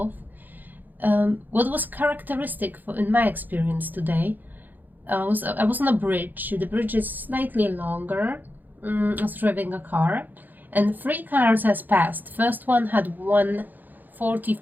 What was characteristic in my experience today I was on a bridge. The bridge is slightly longer. I was driving a car, and 3 cars has passed. First one had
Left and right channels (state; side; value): late; left; 0.086 ms